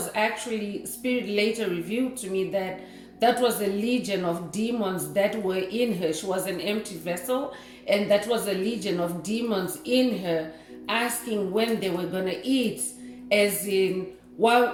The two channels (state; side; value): identical; both; correlation 1.00